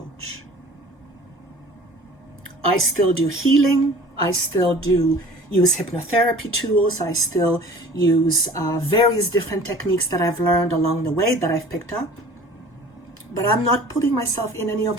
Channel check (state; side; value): normal; both; correlation 0.46